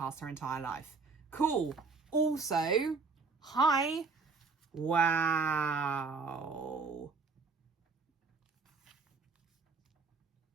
her entire life. Cool. Also, hi. Wow.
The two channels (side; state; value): left; quieter; 4.4 dB